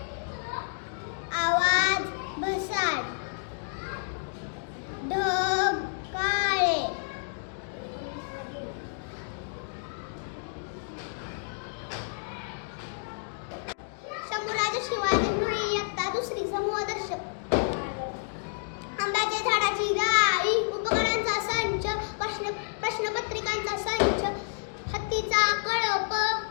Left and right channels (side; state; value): right; silent; digital silence